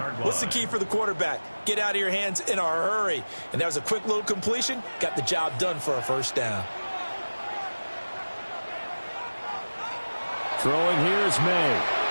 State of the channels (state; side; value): inverted; both; correlation -1.00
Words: What's the key for the quarterback? Get out of your hands in a hurry. And that was a quick little completion. Got the job done for a first down. Throwing here is May.